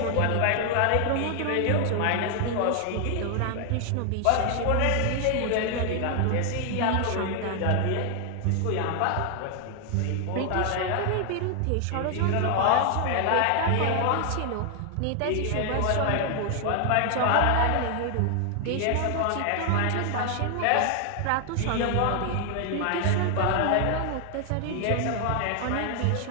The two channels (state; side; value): different; both; correlation 0.00